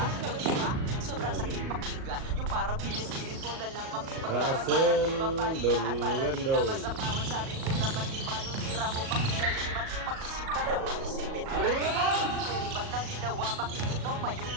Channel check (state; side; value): late; left; 38 ms